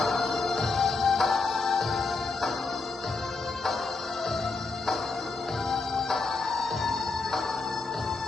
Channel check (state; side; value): quieter; right; 3.9 dB